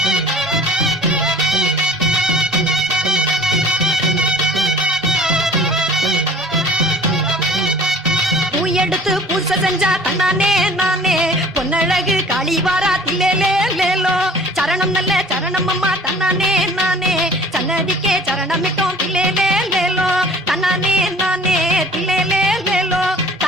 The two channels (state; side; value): normal; both; correlation 0.47